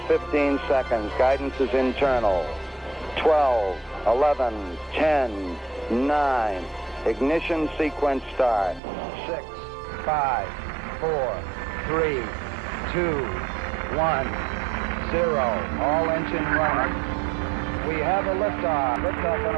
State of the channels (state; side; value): drops out; left; at 8.8 s